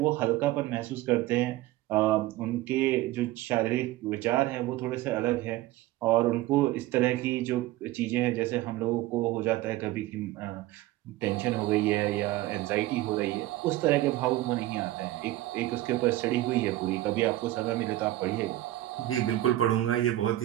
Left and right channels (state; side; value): quieter; left; 16.1 dB